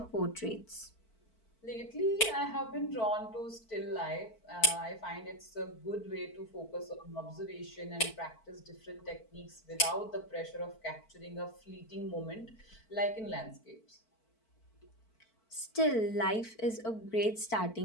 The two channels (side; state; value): right; late; 4.5 ms